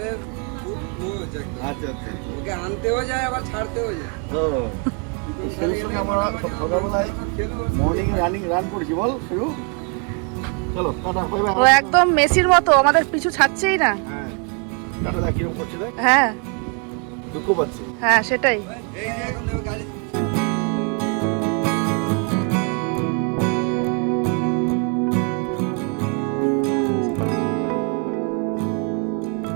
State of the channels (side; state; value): left; quieter; 36.7 dB